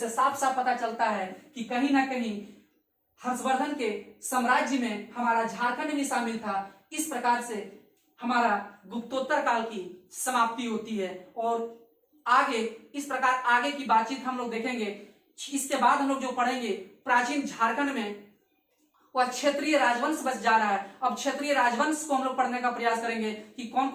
साफ साफ पता चलता है कि कहीं ना कहीं हर्षवर्धन के साम्राज्य में हमारा झारखंड भी शामिल था। इस प्रकार से हमारा गुप्तोत्तर काल की समाप्ति होती है। और आगे इस प्रकार आगे की बातचीत हम लोग देखेंगे। इसके बाद हम लोग जो पढ़ेंगे प्राचीन झारखंड में वह क्षेत्रीय राजवंश बच जा रहा है। अब क्षेत्रीय राजवंश को हम लोग पढ़ने का प्रयास करेंगे कि कौन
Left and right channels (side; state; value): both; identical; correlation 1.00